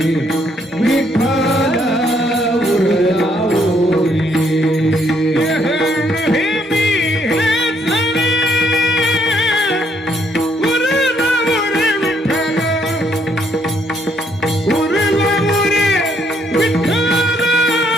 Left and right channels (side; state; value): both; normal; correlation 0.70